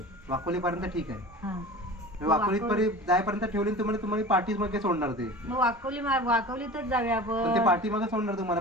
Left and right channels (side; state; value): both; normal; correlation 0.36